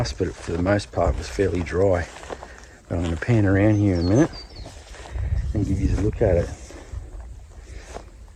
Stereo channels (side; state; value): both; identical; correlation 1.00